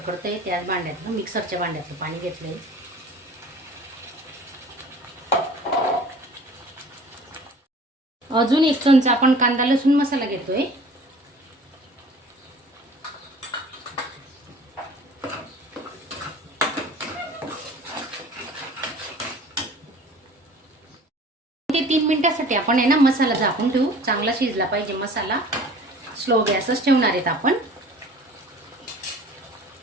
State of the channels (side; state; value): both; normal; correlation 0.46